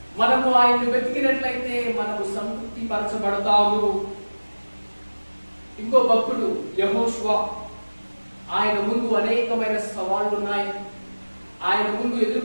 మనము ఆయన్ని వెతికినట్లయితే మనము సంతృప్తి పరచబడతాము. ఇంకో భక్తుడు యెహోషువ, ఆయన ముందు అనేకమైన సవాళ్లు ఉన్నాయి. ఆయన ముందు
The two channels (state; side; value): inverted; both; correlation -1.00